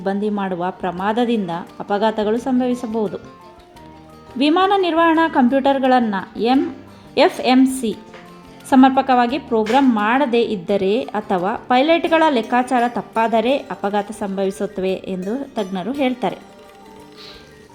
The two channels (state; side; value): identical; both; correlation 1.00